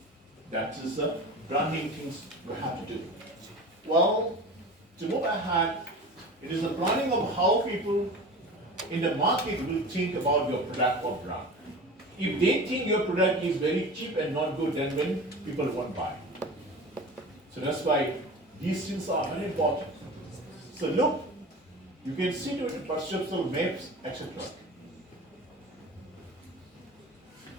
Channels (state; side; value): normal; both; correlation 0.35